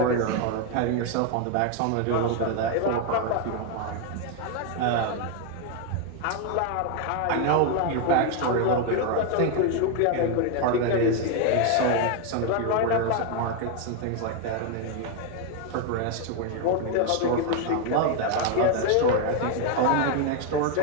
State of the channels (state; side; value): different; both; correlation 0.01